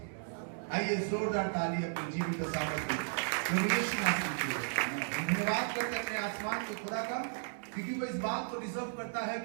आइए जोरदार ताली अपने जीवित सामर्थ्य प्रभु यीशु मसीह के लिए धन्यवाद करते हैं अपने आसमान के खुदा का, क्योंकि वो इस बात को डिजर्व करता है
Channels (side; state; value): left; silent; digital silence